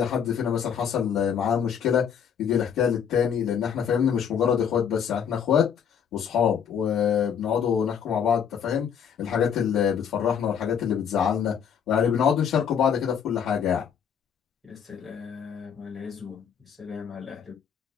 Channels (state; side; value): quieter; right; 7.8 dB